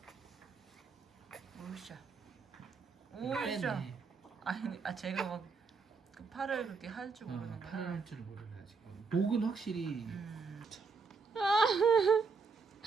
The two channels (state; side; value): quieter; left; 4.8 dB